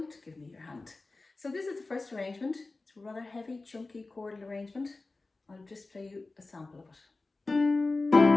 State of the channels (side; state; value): right; quieter; 3.4 dB